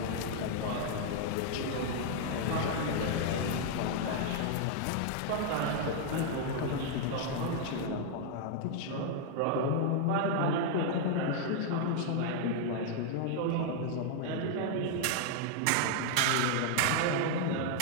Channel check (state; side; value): different; both; correlation 0.00